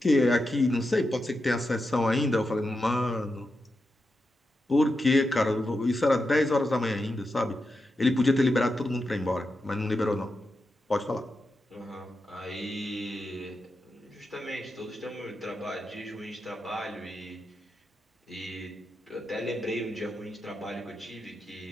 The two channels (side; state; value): both; normal; correlation 0.88